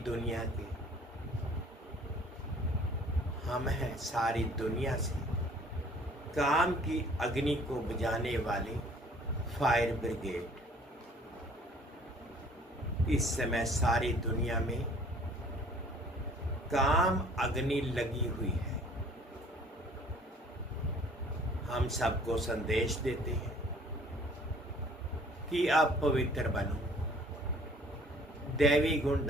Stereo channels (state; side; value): normal; both; correlation 0.54